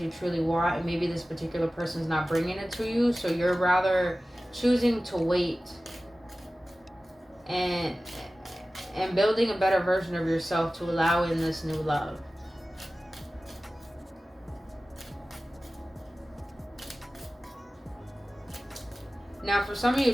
you truly want, and maybe this particular person's not bringing it to you, so you're rather choosing to wait and building a better version of yourself to allow in this new love. Now, for some of you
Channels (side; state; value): both; normal; correlation 0.96